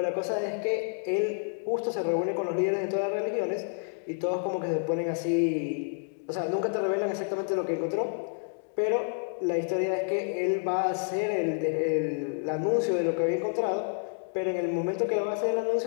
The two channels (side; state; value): right; silent; digital silence